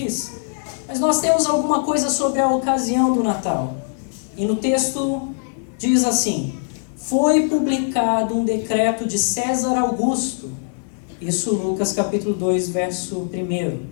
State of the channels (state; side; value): silent; right; digital silence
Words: Mas nós temos alguma coisa sobre a ocasião do Natal. E no texto diz assim: foi publicado um decreto de César Augusto. Isso Lucas capítulo 2, verso